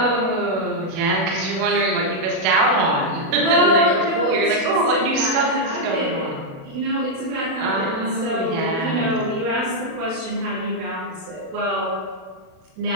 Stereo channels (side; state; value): left; late; 37 ms